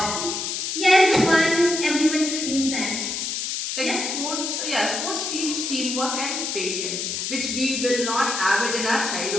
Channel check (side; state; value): left; noise; hiss, 3 dB below the sound